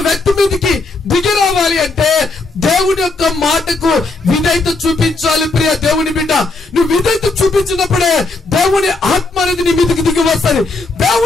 వ్యక్తి మీదకి దిగి రావాలి అంటే దేవుడి యొక్క మాటకు విధేయత చూపించాలి ప్రియ దేవుని బిడ్డ. నువ్వు విధేయత చూపించినప్పుడే దేవుని ఆత్మ అనేది నీ మీదకి దిగి వస్తుంది.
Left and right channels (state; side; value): quieter; right; 3.4 dB